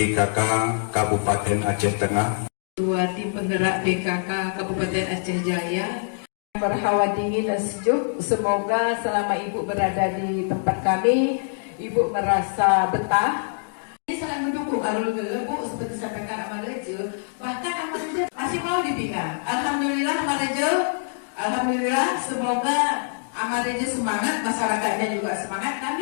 Kabupaten Aceh Tengah, Ketua Tim Penggerak PKK Kabupaten Aceh Jaya. Berhawa dingin dan sejuk. Semoga selama Ibu berada di tempat kami, Ibu merasa betah. Ini sangat mendukung Arul Bu, seperti sampaikan Amarejo. Bahkan Amarejo masih mau dipindah. Alhamdulillah Amarejo, alhamdulillah. Semoga Amarejo semangat, masyarakatnya juga semangat,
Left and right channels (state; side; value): silent; right; digital silence